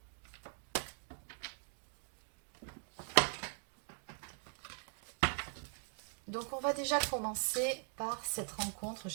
Donc, on va déjà commencer par cette rencontre.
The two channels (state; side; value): silent; left; 50 dB below the other